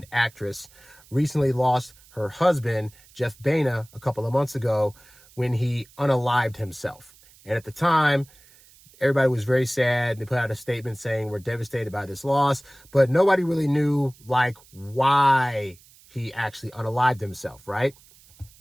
actress, recently lost her husband, Jeff Baena, a couple of months ago when he unalived himself. And at the time, everybody was very sad. They put out a statement saying we're devastated by this loss, but nobody really knew why he actually unalived himself, right?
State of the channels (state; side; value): noise; right; hiss, 26 dB below the sound